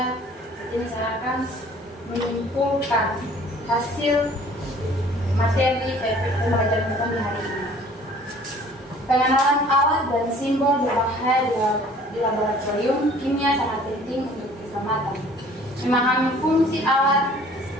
Ini saya akan menyimpulkan hasil materi pembelajaran kita di hari ini. Pengenalan alat dan simbol berbahaya di laboratorium kimia sangat penting untuk keselamatan. Memahami fungsi alat,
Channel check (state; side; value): normal; both; correlation 0.52